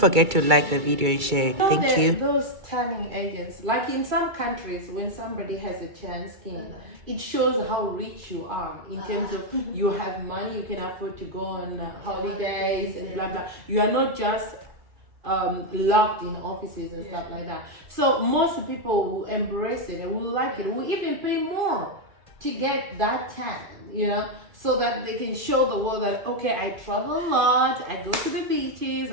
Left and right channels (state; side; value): late; left; 2.3 ms